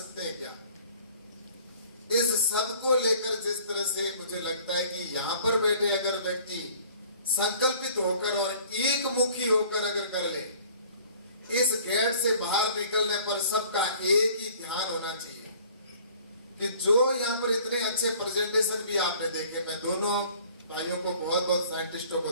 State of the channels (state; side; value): inverted; both; correlation -0.52